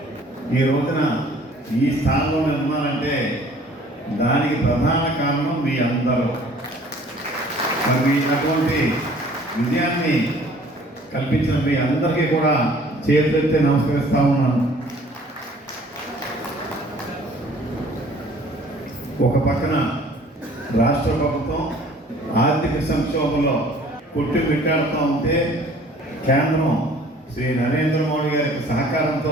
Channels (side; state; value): both; normal; correlation 0.53